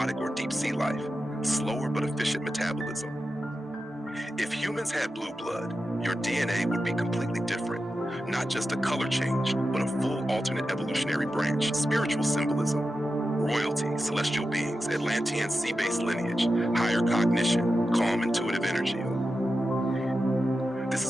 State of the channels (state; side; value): normal; both; correlation 0.91